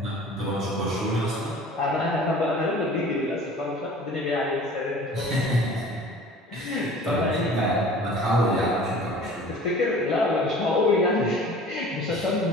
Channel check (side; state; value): both; normal; correlation 0.45